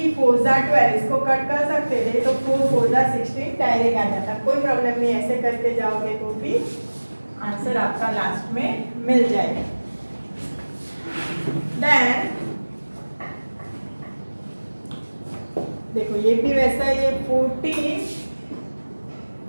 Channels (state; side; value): inverted; both; correlation -1.00